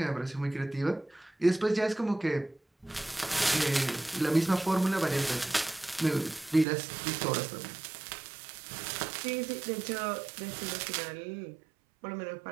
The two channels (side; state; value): left; drops out; at 6.7 s